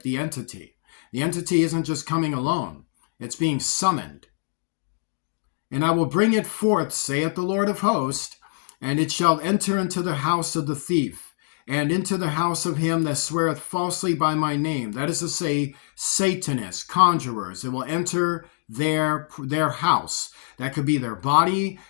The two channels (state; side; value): silent; right; digital silence